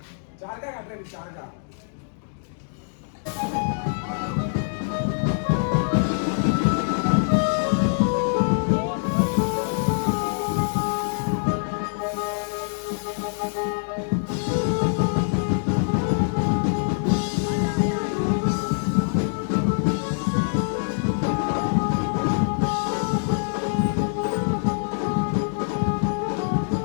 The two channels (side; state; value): right; silent; digital silence